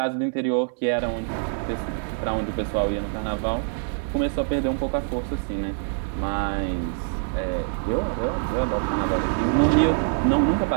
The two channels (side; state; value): left; silent; digital silence